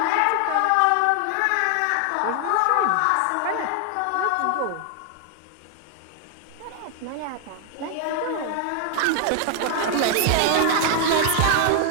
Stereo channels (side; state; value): both; different; correlation 0.00